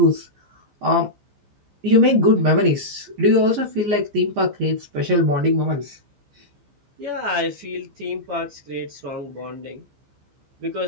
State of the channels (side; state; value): left; late; 15 ms